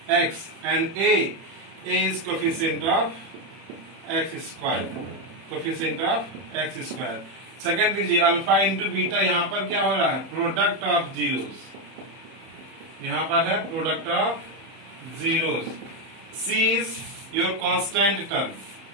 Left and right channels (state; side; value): late; left; 31 ms